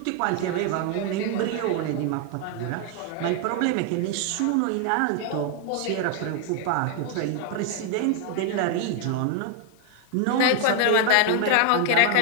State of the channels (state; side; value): different; both; correlation 0.00